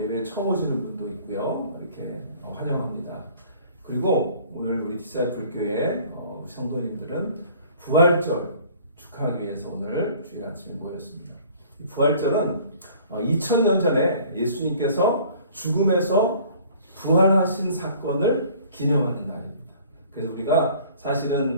처음 오시는 분도 있고요. 이렇게 환영합니다. 그리고 오늘 우리 디사이플 교회 성도님들은 부활절 축하하기 위해서 오늘 주일 아침에 모였습니다. 이 부활절은 2000년 전에 예수님께서 죽음에서 부활하신 사건을 기념하는 날입니다. 그래서 우리가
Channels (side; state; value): both; inverted; correlation -0.51